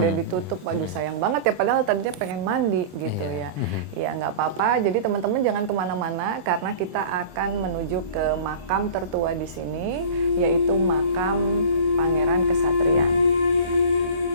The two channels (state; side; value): late; left; 24 ms